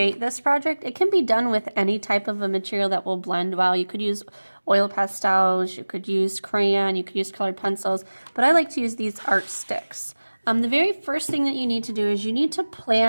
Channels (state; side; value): inverted; both; correlation -1.00